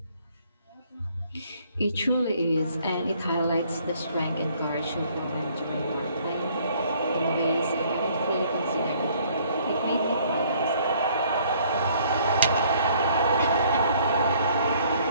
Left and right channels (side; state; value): both; inverted; correlation -0.61